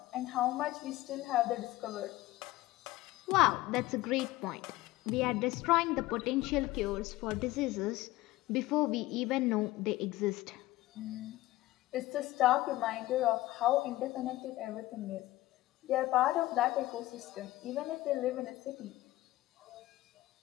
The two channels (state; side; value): quieter; right; 17.3 dB